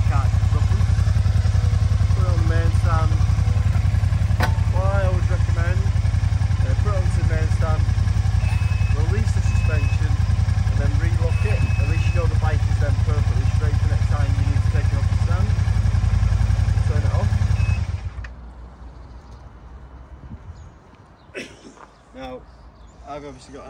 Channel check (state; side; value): identical; both; correlation 1.00